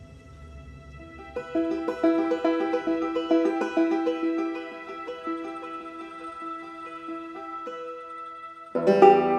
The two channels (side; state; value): both; identical; correlation 1.00